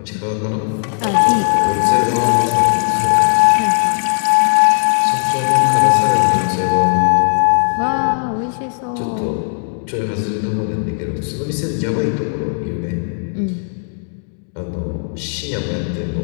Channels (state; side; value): silent; right; digital silence